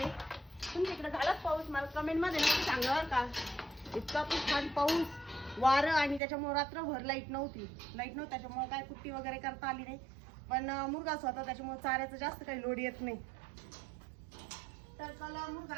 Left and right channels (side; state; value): left; drops out; at 6.2 s